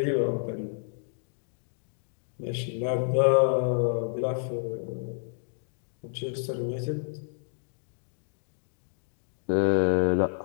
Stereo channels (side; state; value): right; silent; digital silence